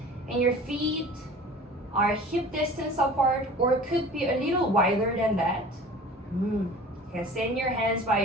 and your feet are hip distance apart, or could be a little wider than that. Okay, send your hands by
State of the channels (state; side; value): normal; both; correlation 0.42